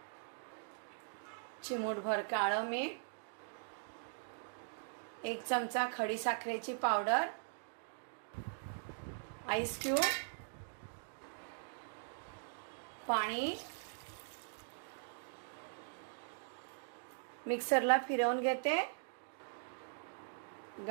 चिमूटभर काळं मीठ, 1 चमचा खडी साखरेची पावडर, आईस क्यूब, पाणी मिक्सरला फिरवून घेते,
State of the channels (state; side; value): silent; left; digital silence